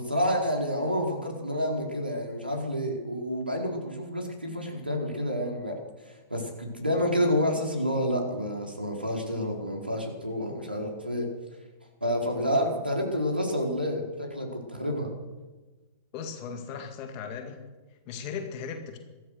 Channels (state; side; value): inverted; both; correlation -0.55